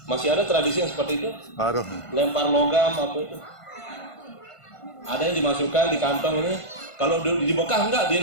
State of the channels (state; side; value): late; right; 1.5 ms